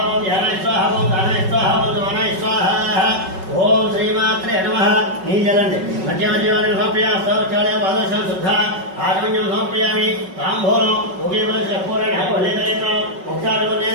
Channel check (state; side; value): late; left; 5.3 ms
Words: ఓం ధ్యానాయ స్వాహ, ఓం ధానాయ స్వాహ, ఓం సమానాయ స్వాహ. ఓం శ్రీమాత్రే నమః. నీ జలండి మధ్యమధ్యవాన్ని సమర్పయామి. హస్తావృక్షాళయామి, పాదోషం శుద్ధ ఆచమన్యం సమర్పయామి. తాంబూలం ఒకే పూరణి హలేదనేత్రం